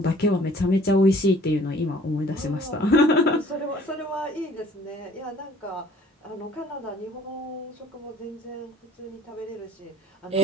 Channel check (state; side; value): normal; both; correlation 0.54